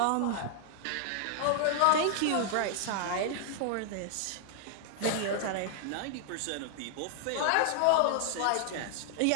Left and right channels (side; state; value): both; different; correlation -0.01